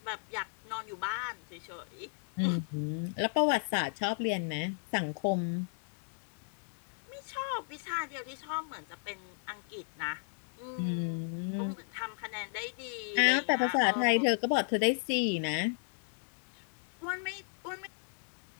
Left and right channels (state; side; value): silent; right; digital silence